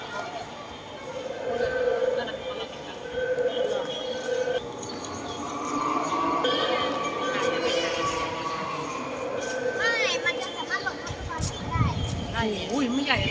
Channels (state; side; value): identical; both; correlation 1.00